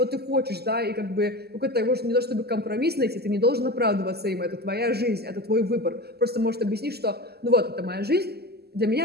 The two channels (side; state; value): left; late; 0.46 ms